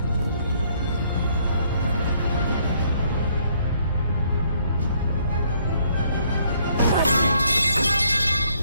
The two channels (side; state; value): both; inverted; correlation -0.67